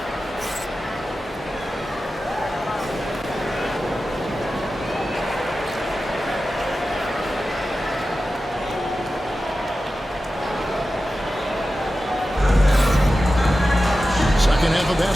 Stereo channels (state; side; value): normal; both; correlation 0.93